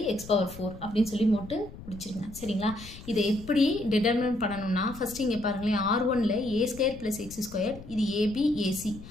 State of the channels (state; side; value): noise; left; rumble, 15 dB below the sound